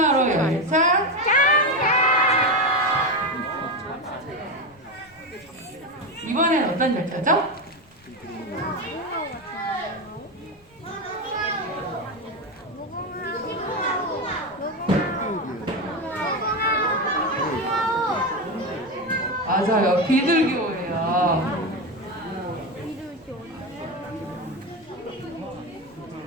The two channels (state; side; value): noise; left; rumble, 30 dB below the sound